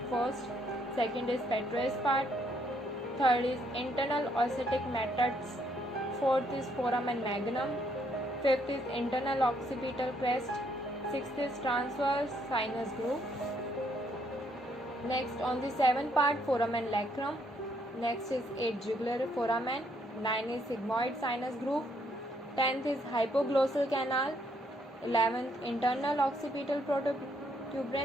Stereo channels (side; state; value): both; normal; correlation 0.71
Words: first, second is petrous part, third is internal ossetic matrix, fourth is foramen magnum, fifth is internal occipital crest, sixth is transverse sinus groove. Next, on the seventh part, foramen lacrum. Next is 8 jugular foramen, 9 is sigmoid sinus groove, 10th is hypoglossal canal, 11th internal occipital